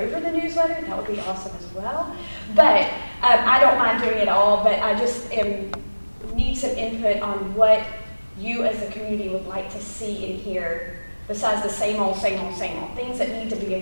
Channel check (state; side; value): inverted; both; correlation -1.00